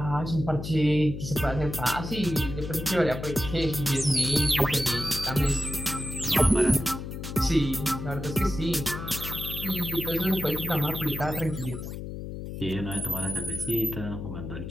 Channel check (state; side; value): noise; left; hum, 8 dB below the sound